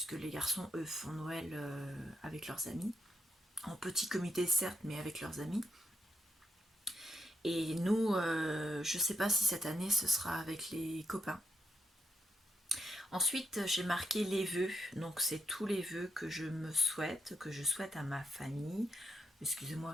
les garçons, eux, font Noël avec leurs amis. En petit comité, certes, mais avec leurs amis. Et nous, je ne sais pas si cette année, ce sera avec les copains. Ensuite, j'ai marqué les vœux. Donc, c'est tous les vœux que je me souhaite, que je souhaite à ma famille. Excusez-moi,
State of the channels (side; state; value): both; normal; correlation 0.79